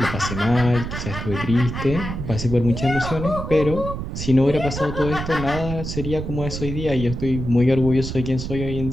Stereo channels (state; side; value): noise; right; rumble, 6 dB below the sound